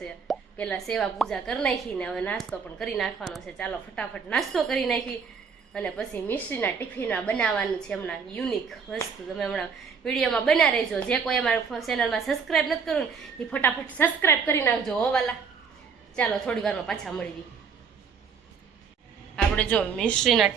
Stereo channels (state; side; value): quieter; left; 6.0 dB